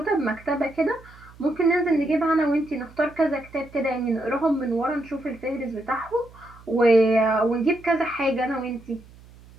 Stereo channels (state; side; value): noise; right; hum, 23 dB below the sound